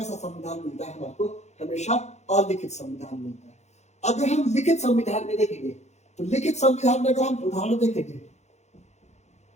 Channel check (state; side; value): late; right; 0.33 ms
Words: संविधान मिलता है हमारे को? हमेशा अलिखित संविधान मिलता है। अगर हम लिखित संविधान में देखेंगे तो लिखित संविधान में अगर हम उदाहरण देखेंगे